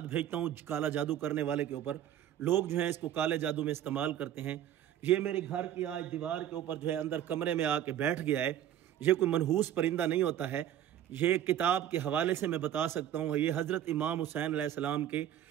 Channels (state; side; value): quieter; left; 11.1 dB